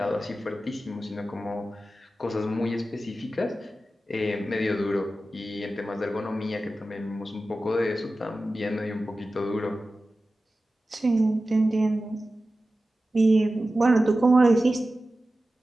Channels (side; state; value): both; normal; correlation 0.94